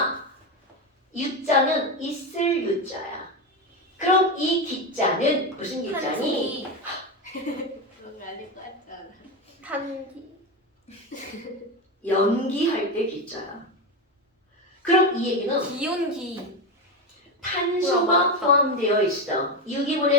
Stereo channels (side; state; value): both; normal; correlation 0.15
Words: 유자는 있을 유자야. 그럼 이 기자는 무슨 기자니? 그런 거 아닐 것 같지 않아? 탄기. 연기할 때 기자야. 그럼 이 얘기는 기온기. 탄소가 포함되어 있어.